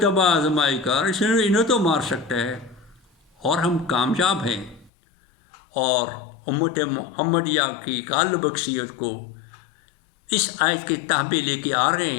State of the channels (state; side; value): drops out; right; at 4.9 s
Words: تباہ آزمائی کر، انہیں تو مار سکتا ہے۔ اور ہم کامیاب ہیں، اور امت محمدیہ کی غالب اکثریت کو اس آیت کے تحبے لے کے آ رہے